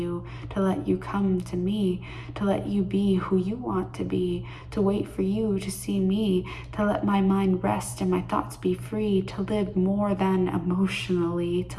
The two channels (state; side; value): identical; both; correlation 1.00